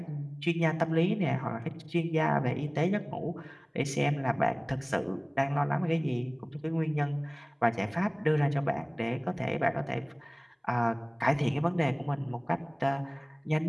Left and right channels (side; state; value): both; identical; correlation 1.00